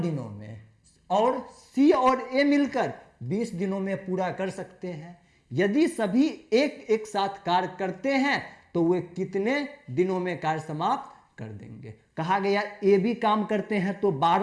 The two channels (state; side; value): identical; both; correlation 1.00